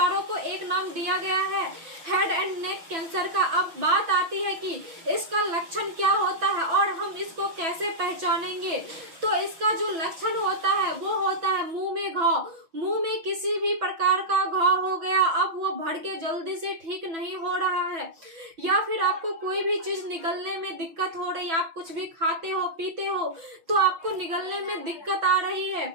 को एक नाम दिया गया है हेड एंड नेक कैंसर का। अब बात आती है कि इसका लक्षण क्या होता है और हम इसको कैसे पहचानेंगे। तो इसका जो लक्षण होता है वो होता है मुंह में घाव। मुंह में किसी भी प्रकार का घाव हो गया, अब वो बढ़ के जल्दी से ठीक नहीं हो रहा है, या फिर आपको कोई भी चीज निगलने में दिक्कत हो रही है, आप कुछ भी खाते हो पीते हो तो आपको निगलने में दिक्कत आ रही है,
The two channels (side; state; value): left; late; 6.1 ms